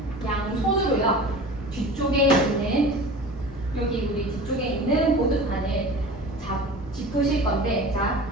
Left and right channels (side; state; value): both; normal; correlation 0.37